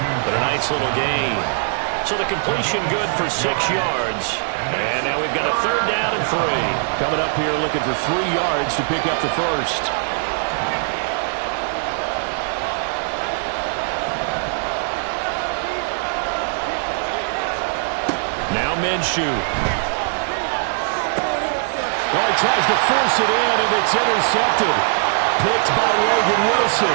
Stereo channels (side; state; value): left; silent; 65 dB below the other